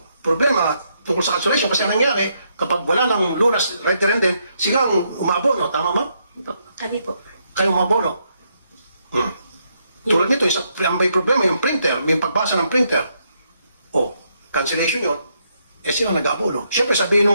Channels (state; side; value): inverted; both; correlation -0.76